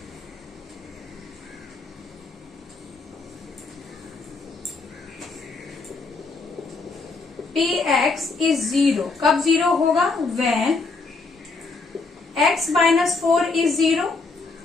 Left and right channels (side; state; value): right; quieter; 4.0 dB